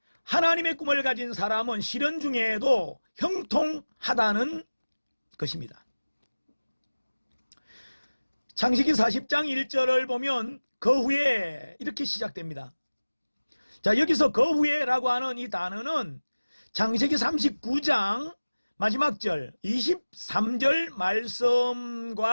하나님의 꿈을 가진 사람은 시련 중에도 형통하다는 것입니다. 창세기 40장 1절을 보면 그 후에 이렇게 시작됩니다. 자, 여기서 그 후에라고 하는 이 단어는 창세기 39장 마지막 절 23절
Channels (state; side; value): inverted; both; correlation -1.00